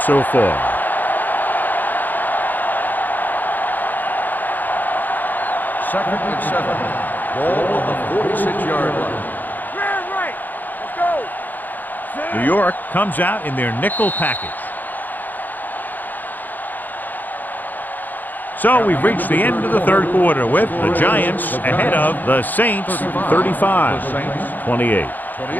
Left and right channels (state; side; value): late; right; 0.086 ms